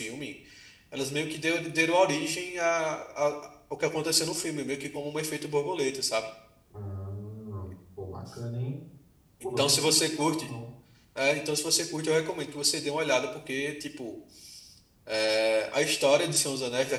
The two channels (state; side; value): identical; both; correlation 1.00